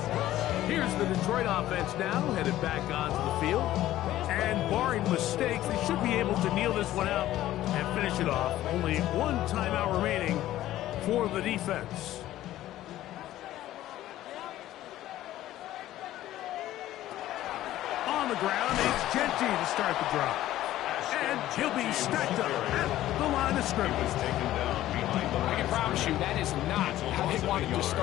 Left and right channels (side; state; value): right; quieter; 14.2 dB